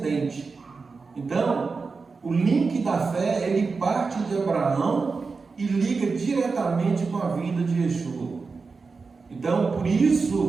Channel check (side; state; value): left; quieter; 4.5 dB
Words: Então, o link da fé, ele parte de Abraão e liga diretamente com a vinda de Yeshua. Então, por